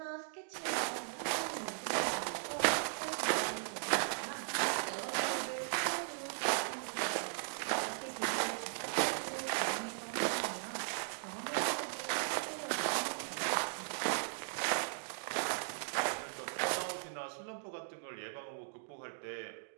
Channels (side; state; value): left; silent; digital silence